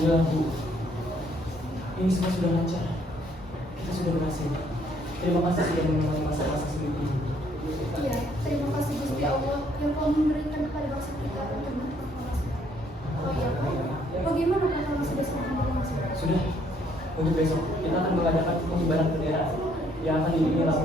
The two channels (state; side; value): normal; both; correlation 0.67